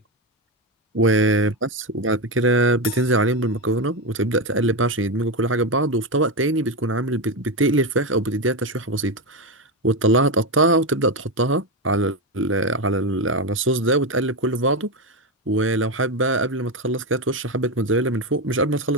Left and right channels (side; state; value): both; normal; correlation 0.11